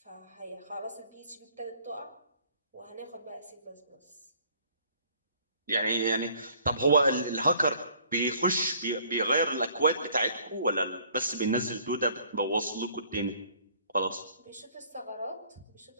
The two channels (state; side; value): inverted; both; correlation -0.58